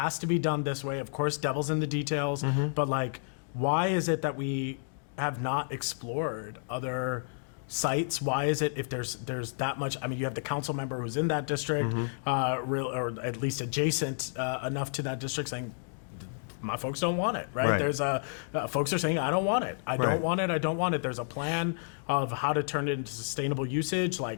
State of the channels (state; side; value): silent; right; digital silence